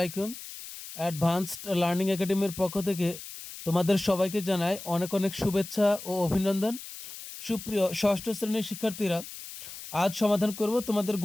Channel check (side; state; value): left; noise; hiss, 12 dB below the sound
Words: Advanced learning একাডেমির পক্ষ থেকে তোমাদের সবাইকে জানাই অনেক অনেক শুভেচ্ছা ও অভিনন্দন। সুপ্রিয় ষষ্ঠ শ্রেণীর শিক্ষার্থীরা, আজ সমাধান করব তোমাদের